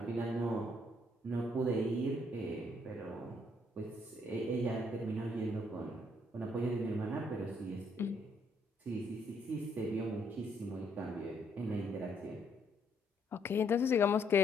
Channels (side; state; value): both; normal; correlation 0.70